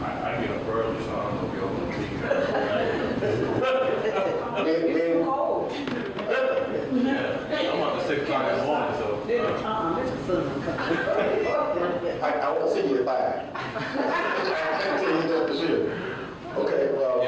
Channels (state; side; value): identical; both; correlation 1.00